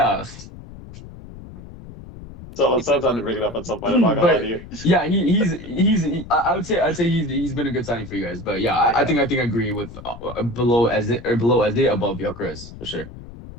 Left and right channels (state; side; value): noise; left; rumble, 15 dB below the sound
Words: So it sounds like to bring it up at some point. I'm not gonna lie to But you. yeah, I would say he's been a good signing for you guys. But yeah, I think I agree with below as it or below as it above Gyökeres for sure.